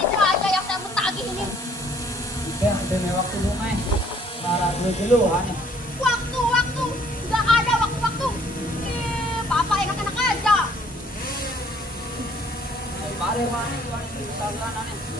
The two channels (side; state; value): both; normal; correlation 0.61